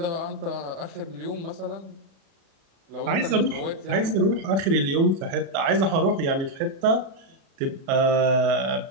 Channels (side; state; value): left; late; 37 ms